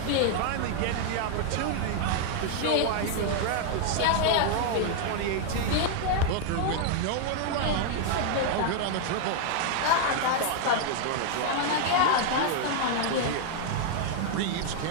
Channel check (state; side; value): different; both; correlation 0.00